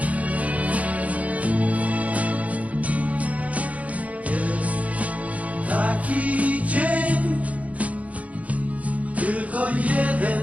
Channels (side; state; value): left; late; 0.068 ms